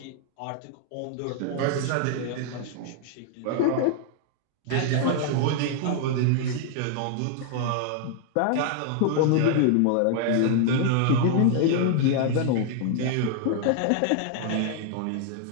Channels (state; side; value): different; both; correlation 0.00